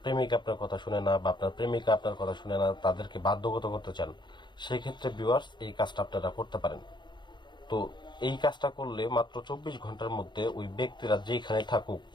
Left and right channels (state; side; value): late; right; 0.22 ms